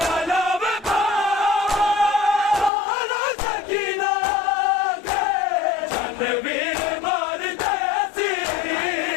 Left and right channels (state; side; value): drops out; right; at 2.7 s